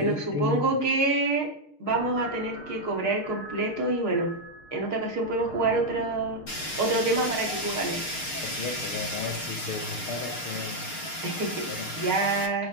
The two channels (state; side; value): late; right; 6.5 ms